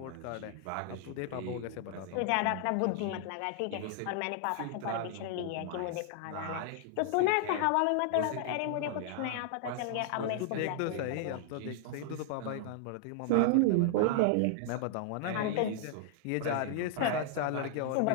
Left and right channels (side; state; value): both; different; correlation 0.00